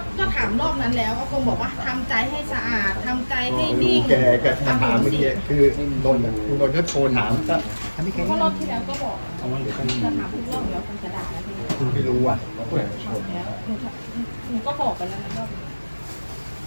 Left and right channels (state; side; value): inverted; both; correlation -1.00